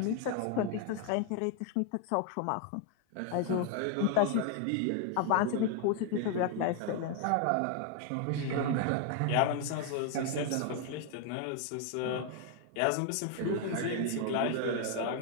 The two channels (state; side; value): different; both; correlation 0.00